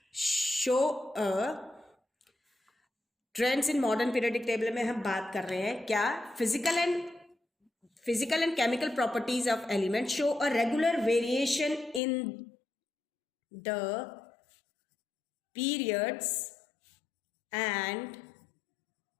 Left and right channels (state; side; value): drops out; right; at 12.0 s